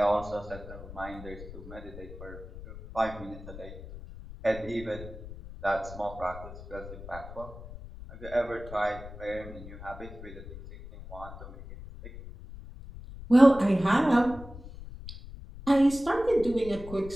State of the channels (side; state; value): left; noise; rumble, 14 dB below the sound